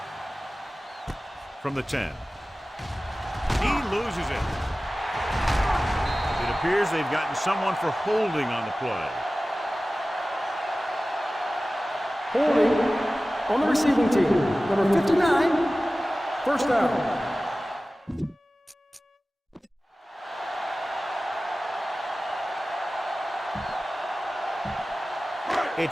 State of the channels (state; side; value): normal; both; correlation 0.96